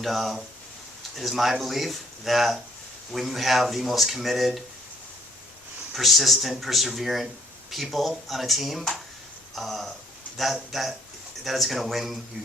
it is my belief that when you have the most committed, persistent, perseverant people on a team, that is going to win you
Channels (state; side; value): normal; both; correlation 0.64